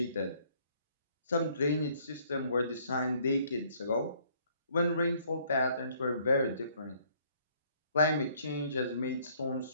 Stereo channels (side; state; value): both; inverted; correlation -0.63